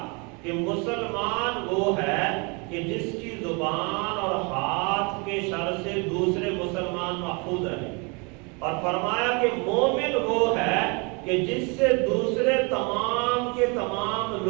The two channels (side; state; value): left; quieter; 31.3 dB